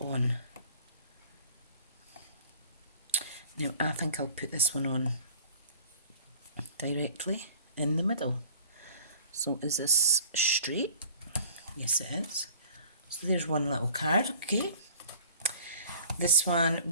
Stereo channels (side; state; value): both; inverted; correlation -0.49